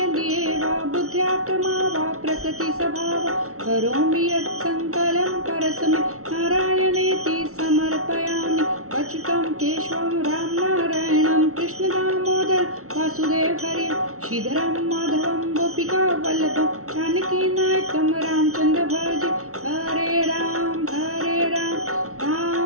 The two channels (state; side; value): late; left; 0.63 ms